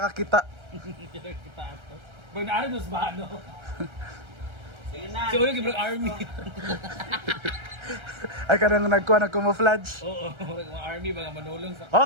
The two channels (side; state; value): left; late; 1.3 ms